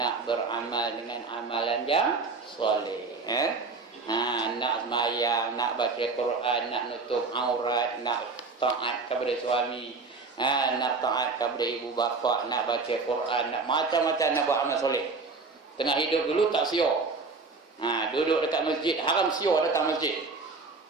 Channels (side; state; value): left; quieter; 4.1 dB